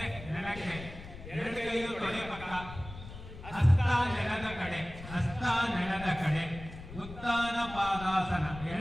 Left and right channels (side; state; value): left; noise; rumble, 13 dB below the sound